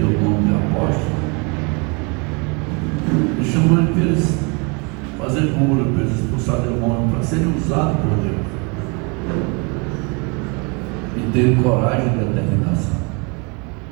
o nome de apóstolo, ele chamou ele para eles fazer cura, para eles expulsar demônios, para serem usados por Deus. E ter coragem e determinação.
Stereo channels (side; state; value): left; quieter; 31.6 dB